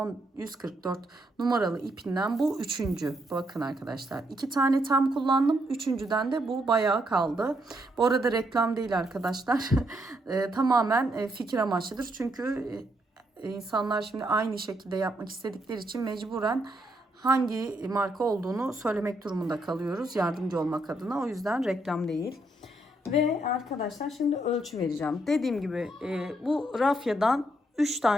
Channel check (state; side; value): normal; both; correlation 0.76